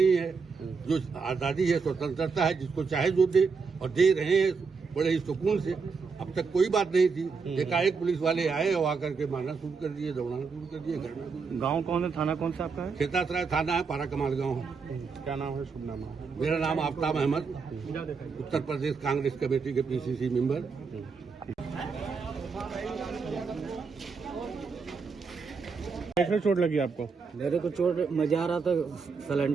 है। जो आज़ादी है, स्वतंत्रता है, जिसको चाहे जो दे, और दे रहे हैं बड़े ही सुकून से। अब तक कोई बात नहीं थी। एकाएक पुलिस वाले आए और आकर के मारना शुरू कर दिए, दौड़ाना शुरू कर दिए। घर में गांव कौन है, थाना कौन सा आपका है? खेतासराय थाना है, पारा कमाल गाँव। क्या नाम है, शुभ नाम है? मेरा नाम आफ्ताब अहमद, उत्तर प्रदेश कांग्रेस कमेटी के PCC मेंबर। कैसे चोट लगी आपको? मेरे को चोट, मैं जा रहा था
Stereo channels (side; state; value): left; quieter; 5.1 dB